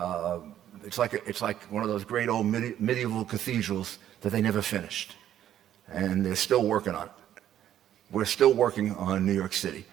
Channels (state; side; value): quieter; left; 11.2 dB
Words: It's like one of those great old medieval cathedrals that they never finished, and they're still working on it. We're still working on New York City.